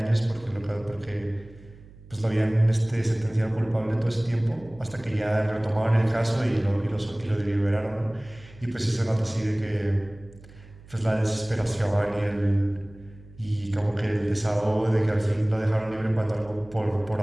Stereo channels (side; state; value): right; noise; hum, 21 dB below the sound